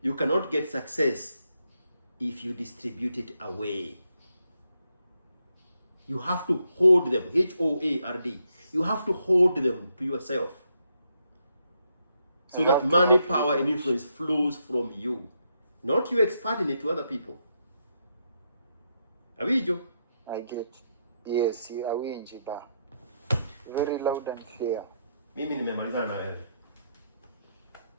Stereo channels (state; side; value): inverted; both; correlation -0.79